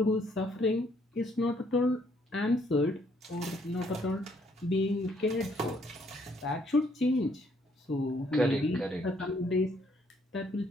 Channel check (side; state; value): both; normal; correlation 0.68